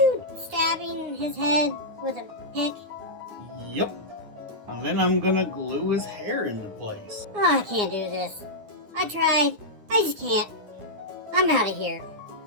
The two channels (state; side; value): late; left; 9.7 ms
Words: stabbing his head with a pick? Yep. And then I'm going to glue his hair into place. Oh, I can't do this. I tried. I just can't. I'm out of here.